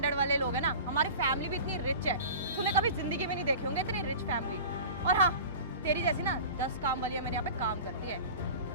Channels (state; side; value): inverted; both; correlation -0.36